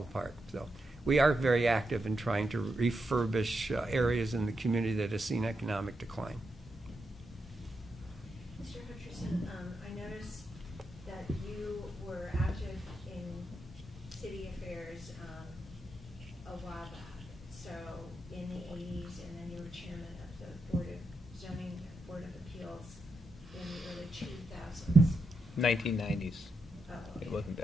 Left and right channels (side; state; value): both; normal; correlation 0.85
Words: apart. So we are very active in trying to refurbish areas in the community that has seen economic decline. Mr. Hutcherson, I noticed that you were active in city affairs a while back, so in the 80s, and then you were chairman of the Board of Zoning Board of Appeals in the early 2000s. 1990s. Oh, okay. It wasn't